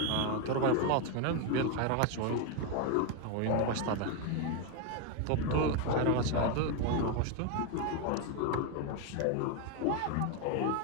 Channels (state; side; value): different; both; correlation 0.02